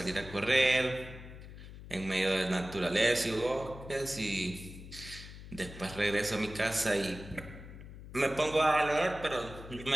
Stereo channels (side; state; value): left; noise; hum, 14 dB below the sound